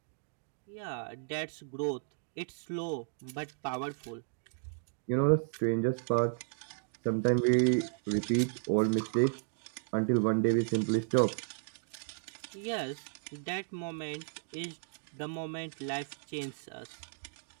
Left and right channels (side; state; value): left; silent; digital silence